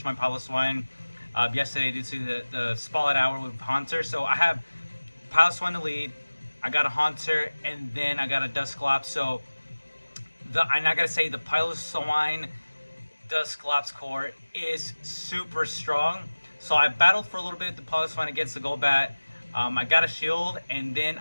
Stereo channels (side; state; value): both; inverted; correlation -1.00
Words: my Pablo Swine yesterday due to the spotlight hour with Hunter. So I have Pile Swine to lead. I got a Haunter, and then I got a Dusclops. So and I gotta say, the Pile Swine Dusclops core is super strong. So I battled for a little bit the Pile Swine against the Golbat. I got a shield, and then